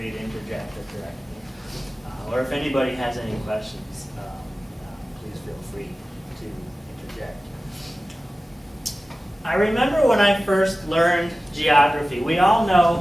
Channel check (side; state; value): both; normal; correlation 0.96